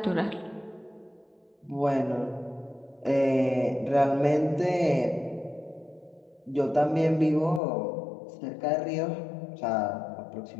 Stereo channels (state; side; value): drops out; right; at 7.6 s